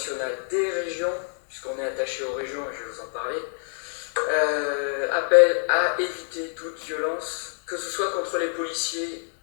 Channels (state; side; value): silent; right; 61 dB below the other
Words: des régions, puisqu'on est attaché aux régions et je vais vous en parler, appelle à éviter toute violence, que ce soit contre les policiers